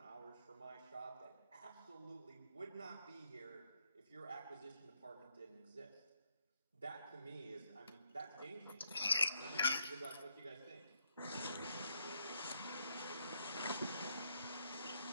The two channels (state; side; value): inverted; both; correlation -0.76